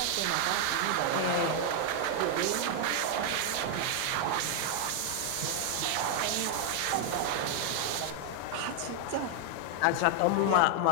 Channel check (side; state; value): both; different; correlation 0.00